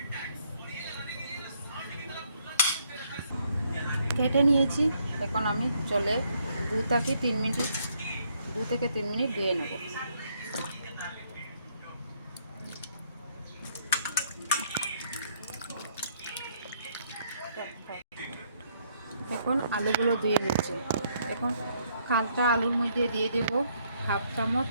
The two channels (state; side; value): inverted; both; correlation -0.70